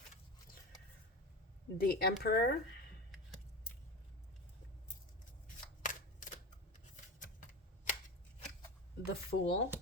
The Emperor. The Fool.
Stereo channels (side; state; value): both; normal; correlation 0.26